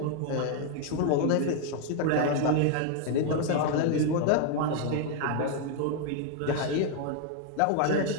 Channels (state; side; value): different; both; correlation 0.00